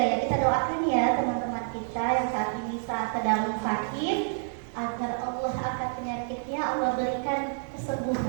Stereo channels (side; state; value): left; silent; digital silence